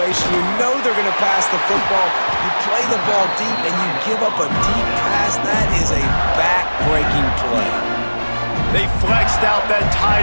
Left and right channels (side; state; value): both; inverted; correlation -1.00